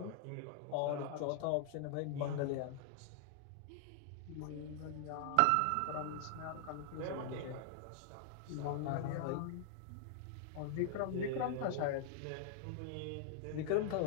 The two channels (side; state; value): both; different; correlation 0.00